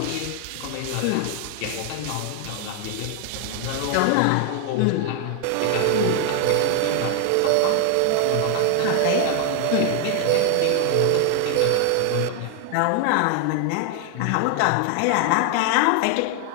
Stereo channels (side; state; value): both; different; correlation 0.00